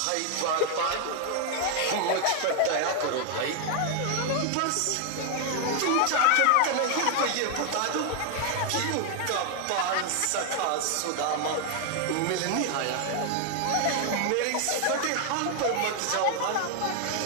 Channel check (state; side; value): different; both; correlation 0.00